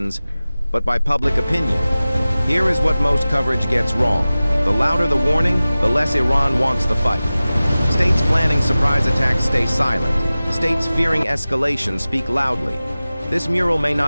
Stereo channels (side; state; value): both; inverted; correlation -0.97